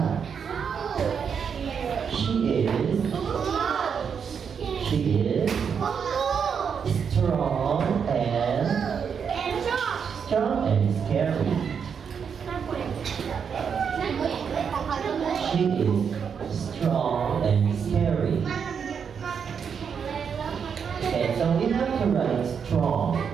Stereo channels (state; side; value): quieter; left; 6.8 dB